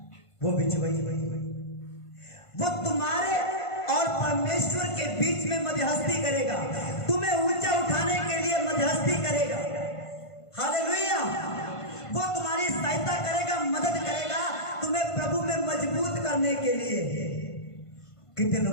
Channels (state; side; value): late; right; 1.5 ms